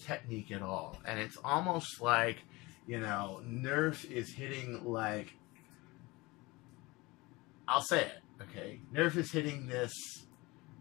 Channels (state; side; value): quieter; right; 22.6 dB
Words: technique at all. And it's almost like, you know, Nerf is hitting like, I'll say it, okay? Nerf is hitting this